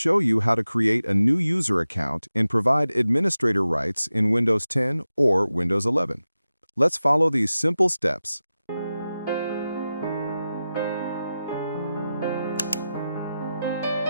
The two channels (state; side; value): inverted; both; correlation -0.93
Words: you how to create a new user account and provide administrator rights in Windows 10 or Windows 11. Let's follow these simple steps.